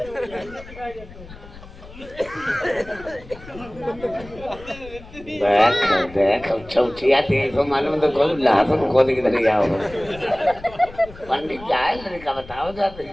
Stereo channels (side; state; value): left; noise; rumble, 18 dB below the sound